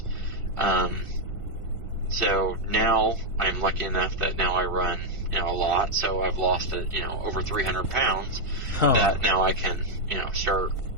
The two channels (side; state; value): left; late; 1.4 ms